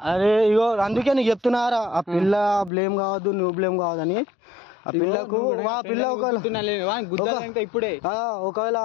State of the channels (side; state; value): right; drops out; at 2.7 s